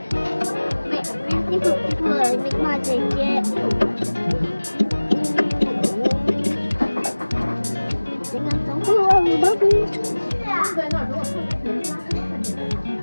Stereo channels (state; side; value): inverted; both; correlation -1.00